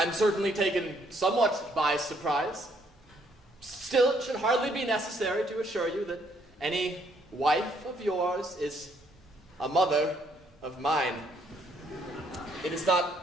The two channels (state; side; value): normal; both; correlation 0.69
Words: certainly taken somewhat by surprise. Still, it should hardly be necessary to assure you that any wife of yours is a mother of mine. It is